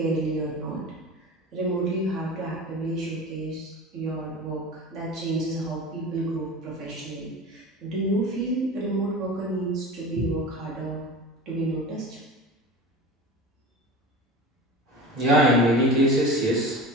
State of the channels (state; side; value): normal; both; correlation 0.33